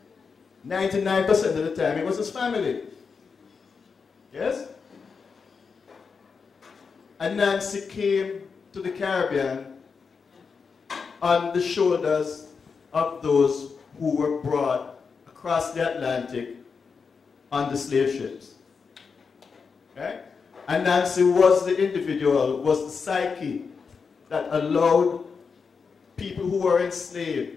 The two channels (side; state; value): right; quieter; 5.4 dB